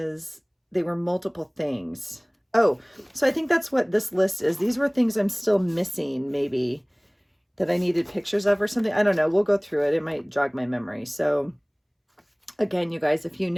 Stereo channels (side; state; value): both; identical; correlation 1.00